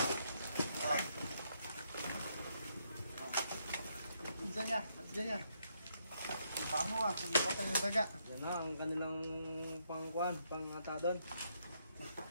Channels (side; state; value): both; inverted; correlation -0.75